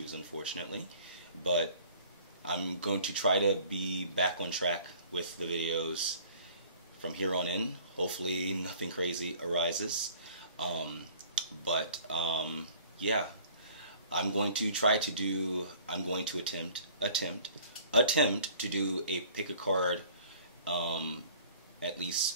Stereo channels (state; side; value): inverted; both; correlation -0.51